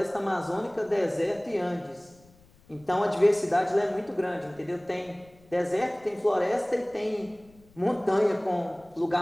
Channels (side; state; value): left; noise; rumble, 28 dB below the sound